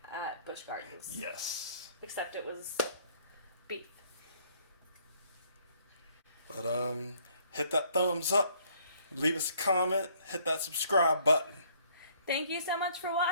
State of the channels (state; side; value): inverted; both; correlation -0.63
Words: at Busch Gardens. Yes. Except it was beef. But hit that thumbs up, leave us a comment, hit that subscribe button. Thank you so much for